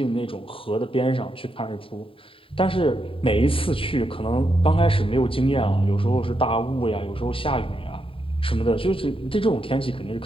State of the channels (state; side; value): late; right; 0.26 ms